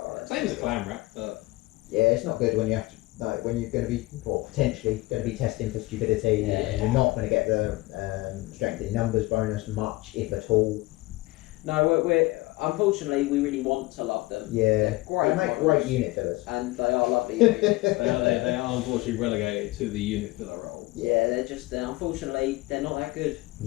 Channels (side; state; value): right; quieter; 20.9 dB